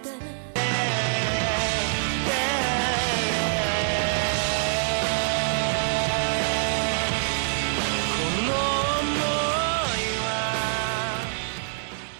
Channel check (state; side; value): silent; left; 62 dB below the other